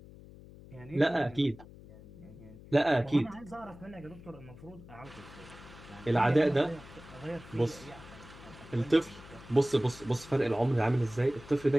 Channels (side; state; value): left; noise; hum, 18 dB below the sound